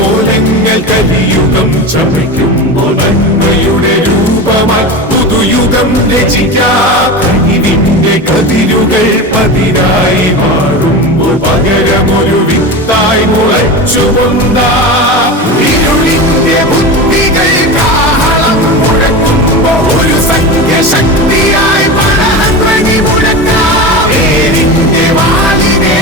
കലിയുഗം ചമയ്ക്കുമ്പോൾ നന്മയുടെ രൂപമായി പുതുയുഗം രചിക്കാം. കഴിവിന്റെ കതിരുകൾ പതിരായി മാറുമ്പോൾ പകരമൊരു വിത്തായി മുളച്ചുകൊണ്ടാം. ഇരുളിന്റെ ബുദ്ധികൾ കാഹളം മുഴക്കുമ്പോൾ ഒരു സംഖ്യശക്തിയായി പടർന്നടി മുഴക്കാം. നേരിന്റെ വാളിനെ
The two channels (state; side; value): normal; both; correlation 0.26